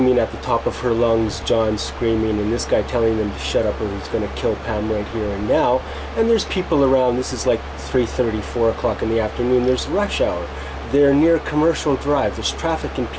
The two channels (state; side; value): identical; both; correlation 1.00